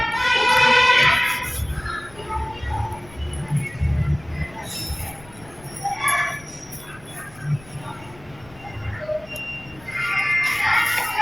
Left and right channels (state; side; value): noise; left; rumble, 22 dB below the sound